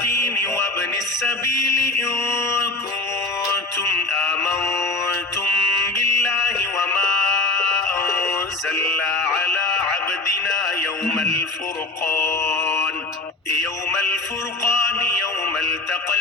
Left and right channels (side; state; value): right; quieter; 3.3 dB